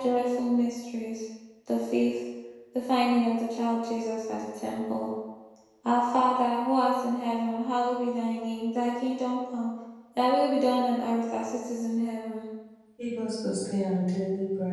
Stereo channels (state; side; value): identical; both; correlation 1.00